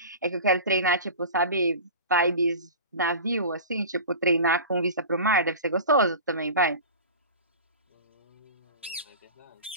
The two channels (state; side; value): inverted; both; correlation -0.33